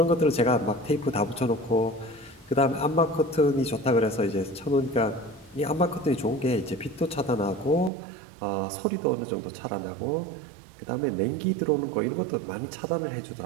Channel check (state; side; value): drops out; left; at 7.9 s